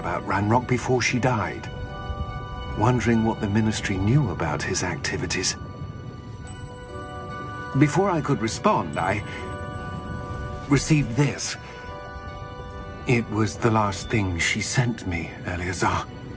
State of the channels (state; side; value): identical; both; correlation 1.00